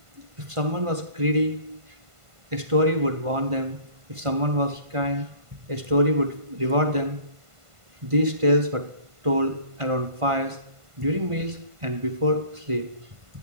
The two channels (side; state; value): left; late; 1.5 ms